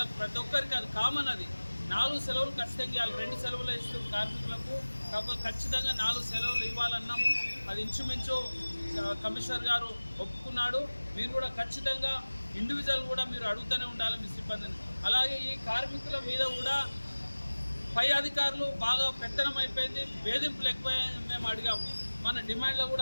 ప్రతి ఒక్కరికి అది కామన్, అది 4 సెలవులు ఖచ్చితంగా ఇవ్వాలి. 2 సెలవులు ఇస్తూ కార్మికులకు కాకపోతే ఖచ్చితంగా 4 సెలవులు ఇవ్వాలన్నాము. అది ఇంచుమించు కమిషనర్ గారు ఒప్పుకున్నాడు. మీరు కూడా ఖచ్చితంగా ఇండివిజువల్ కూడా మీరు అడుగుతూనే ఉండాలి మీ సిబ్బందిని. అలాగే ఈ కార్మికుల మీద కూడా పై అధికారులు బాగా పెత్తనం అయిపోయింది, వేధింపులు ఎక్కువైంది. మేము అడిగాము, మన డిమాండ్లో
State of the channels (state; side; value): inverted; both; correlation -1.00